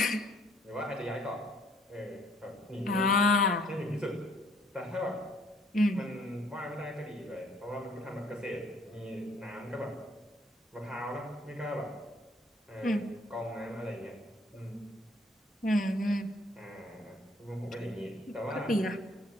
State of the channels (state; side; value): normal; both; correlation 0.61